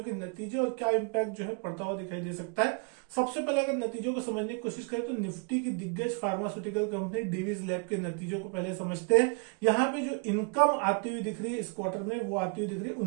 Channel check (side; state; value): left; quieter; 37.0 dB